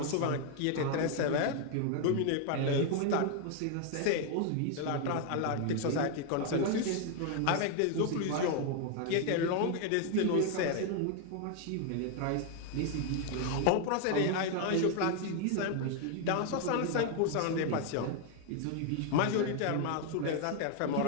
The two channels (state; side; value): different; both; correlation 0.00